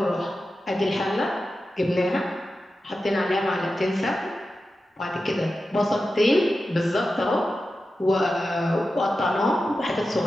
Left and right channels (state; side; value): normal; both; correlation 0.92